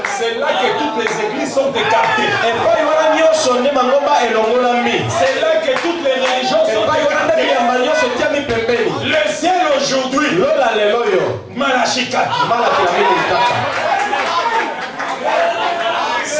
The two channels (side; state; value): both; identical; correlation 1.00